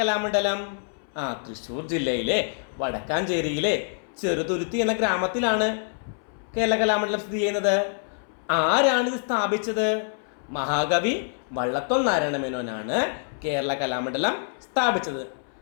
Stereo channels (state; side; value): silent; right; 61 dB below the other